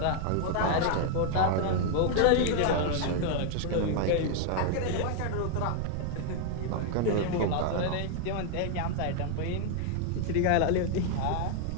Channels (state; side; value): different; both; correlation 0.00